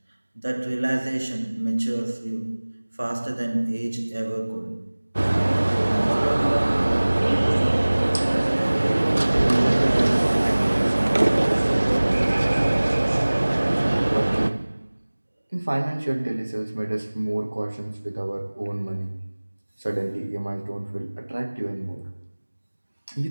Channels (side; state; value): both; inverted; correlation -1.00